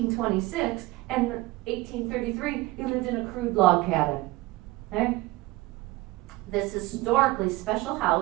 and 1833, he lived in a crude log cabin. Okay? This historically special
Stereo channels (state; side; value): quieter; left; 20.4 dB